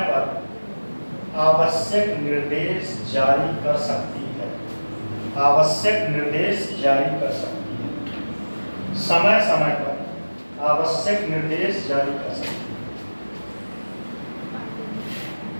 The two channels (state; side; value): inverted; both; correlation -1.00